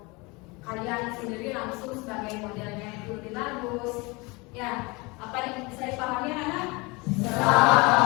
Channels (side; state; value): right; quieter; 26.3 dB